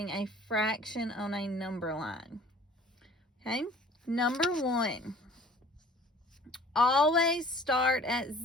a fraction on a number line. Okay, number one, always start at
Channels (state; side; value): normal; both; correlation 0.50